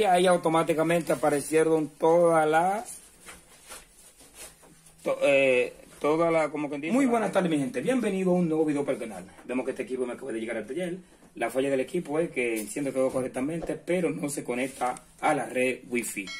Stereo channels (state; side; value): identical; both; correlation 1.00